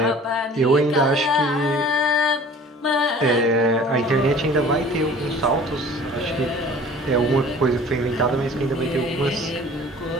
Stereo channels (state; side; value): normal; both; correlation 0.47